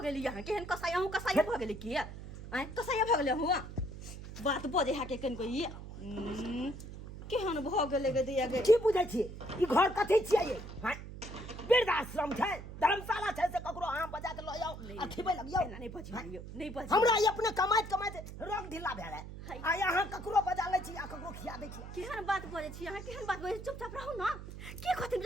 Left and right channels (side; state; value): right; noise; hum, 11 dB below the sound